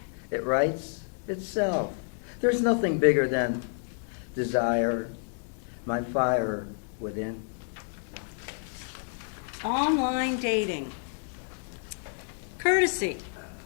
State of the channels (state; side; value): silent; right; 58 dB below the other